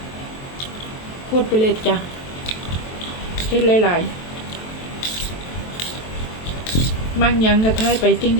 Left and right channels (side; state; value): right; late; 23 ms